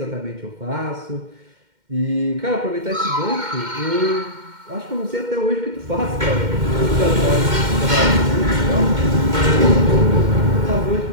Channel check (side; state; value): left; late; 2.1 ms